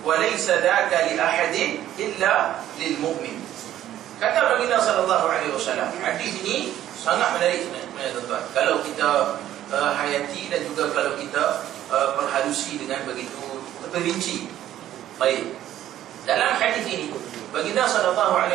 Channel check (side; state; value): left; quieter; 12.4 dB